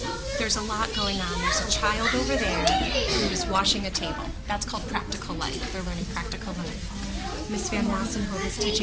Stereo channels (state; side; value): identical; both; correlation 1.00